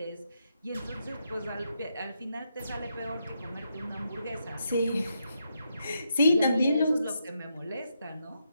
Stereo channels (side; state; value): both; inverted; correlation -0.81